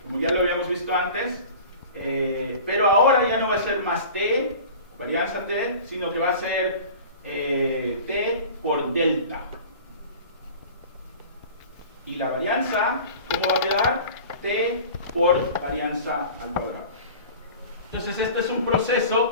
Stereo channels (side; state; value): both; inverted; correlation -0.40